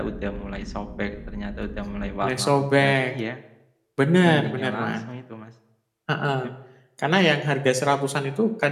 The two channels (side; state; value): both; identical; correlation 1.00